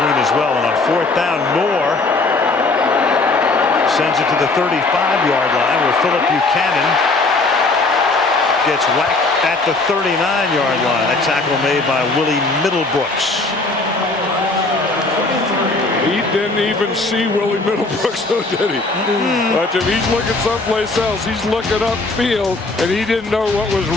as well, and on 4th down, Moore sends it to the 35-yard line where Philip Buchanan gets whacked at the 39-yard line. That tackle made by Willie Middlebrooks. He didn't even see Willie Middlebrooks, though, did he? But if he's looking someplace else, he's looking upfield, and he didn't know what was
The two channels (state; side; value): quieter; right; 3.4 dB